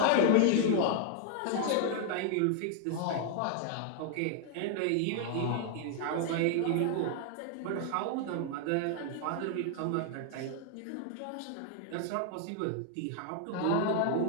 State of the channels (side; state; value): both; different; correlation 0.00